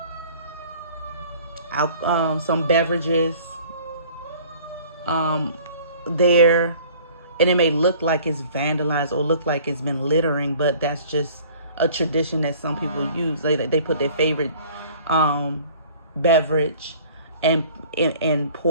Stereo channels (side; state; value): both; inverted; correlation -0.50